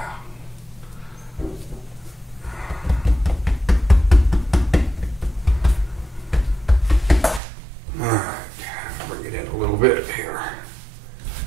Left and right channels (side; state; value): left; drops out; at 7.4 s